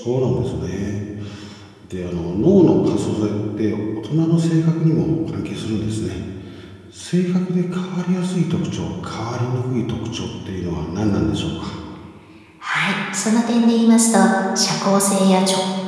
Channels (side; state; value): both; identical; correlation 1.00